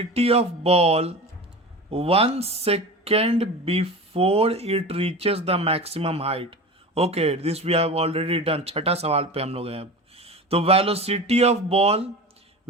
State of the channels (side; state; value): both; normal; correlation 0.31